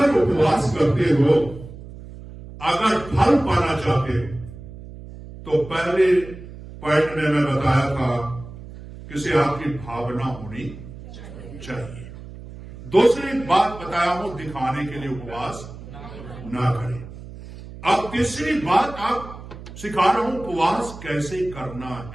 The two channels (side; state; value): right; noise; hum, 14 dB below the sound